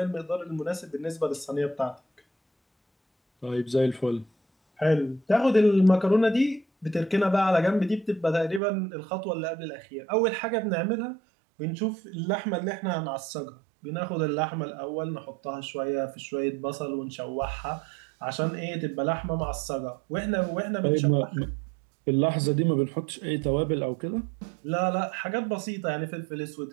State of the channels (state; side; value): drops out; left; at 8.6 s